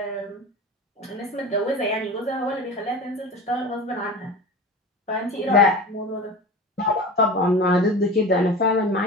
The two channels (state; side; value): normal; both; correlation 0.32